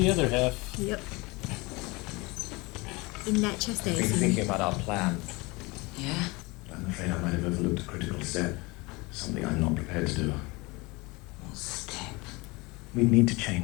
other half. Yep. In that chest, I I've been assume. thinking about our plan. Yeah? I'm afraid I might have overlooked a critical step. Something I'm not prepared to do. What step? We need to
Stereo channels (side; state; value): right; quieter; 24.7 dB